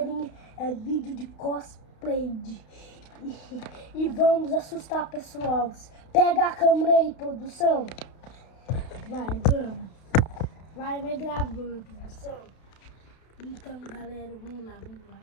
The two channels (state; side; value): late; right; 32 ms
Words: é vídeo de cosplay e vamos assustar pessoal. Pega a câmera aí, produção. Vamos. Vai gravando, produção. Então, galera, vamos lá.